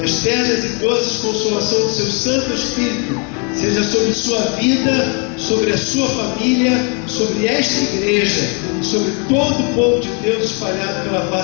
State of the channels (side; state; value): right; quieter; 35.9 dB